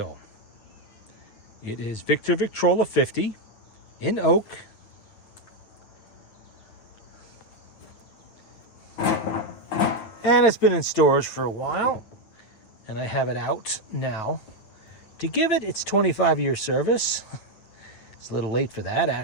It is Victrola 50 in oak. And it's been in storage for a while, and I have it out now to give it its 25-year service. It's a little late for that,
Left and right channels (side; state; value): right; late; 9.6 ms